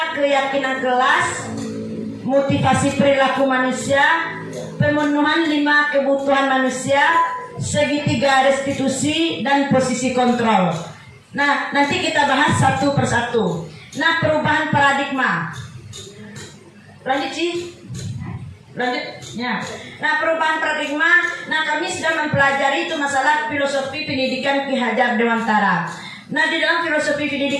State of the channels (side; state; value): both; identical; correlation 1.00